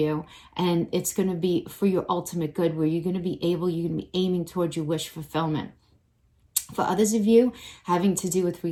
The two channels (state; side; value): identical; both; correlation 1.00